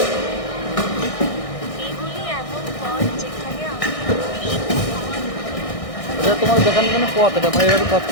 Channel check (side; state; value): right; late; 1.6 ms